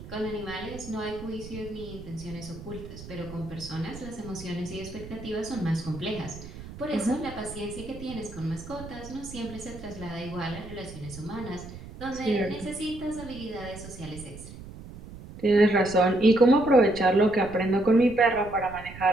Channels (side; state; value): right; noise; rumble, 14 dB below the sound